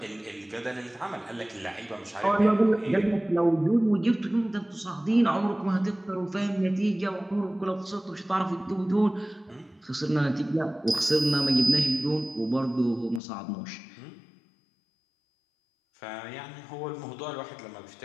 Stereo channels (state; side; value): drops out; right; at 13.2 s